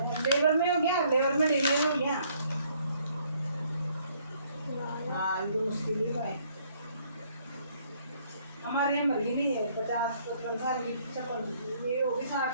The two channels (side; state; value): both; inverted; correlation -0.65